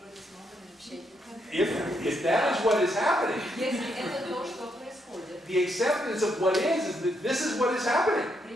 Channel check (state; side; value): normal; both; correlation 0.77